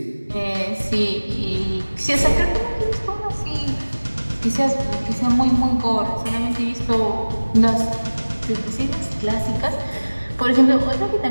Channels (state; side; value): inverted; both; correlation -1.00